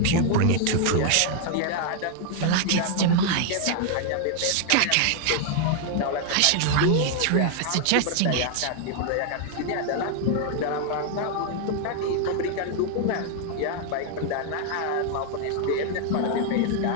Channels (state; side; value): different; both; correlation 0.00